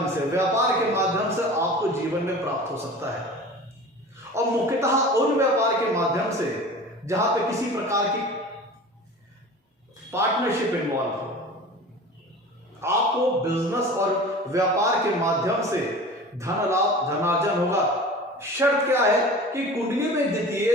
से, व्यापार के माध्यम से आपको जीवन में प्राप्त हो सकता है। और मुख्यतः उन व्यापार के माध्यम से जहां पे किसी प्रकार की पार्टनरशिप इन्वॉल्व हो। आपको बिजनेस और व्यापार के माध्यम से धन लाभ, धनार्जन होगा। शर्त क्या है कि कुंडली में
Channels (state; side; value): normal; both; correlation 0.38